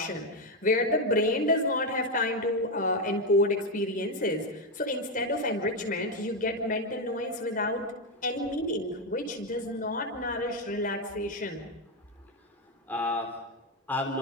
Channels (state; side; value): normal; both; correlation 0.07